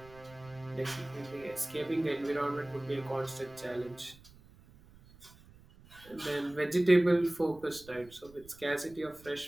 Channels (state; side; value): noise; right; rumble, 23 dB below the sound